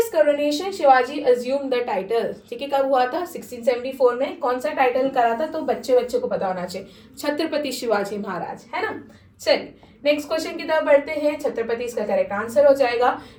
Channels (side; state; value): both; identical; correlation 1.00